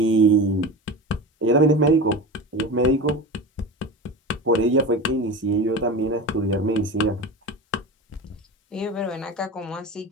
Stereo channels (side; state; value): both; normal; correlation 0.28